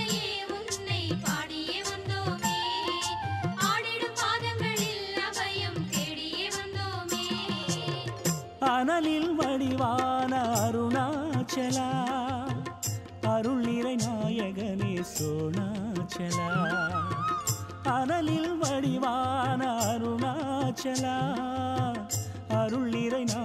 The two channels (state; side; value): identical; both; correlation 1.00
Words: அனலில் வடிவான அருணாச்சலா அருள் நிறை நாயகனே சோணாச்சலா அனலில் வடிவான அருணாச்சலா அருள் நிறை